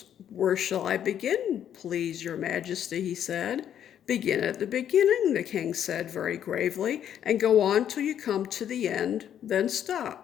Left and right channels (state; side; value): quieter; right; 9.8 dB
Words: "Where shall I begin, please your majesty?" he said. "Begin at the beginning," the king said very gravely, "and go on till you come to the end, then